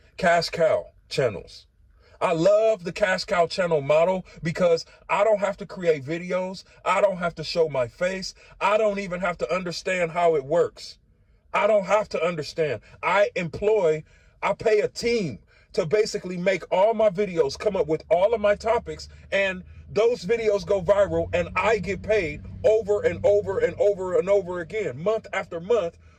cash cow channels. I love the cash cow channel model because I don't have to create videos. I don't have to show my face. I don't even have to understand how it works. I don't have to understand. I pay a team to basically make all my videos, come up with all of my topics, and those videos go viral, and I get paid over and over and over and over again, month after month,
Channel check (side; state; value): both; identical; correlation 1.00